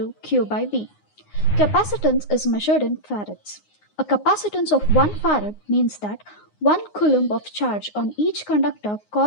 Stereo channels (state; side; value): late; right; 9.6 ms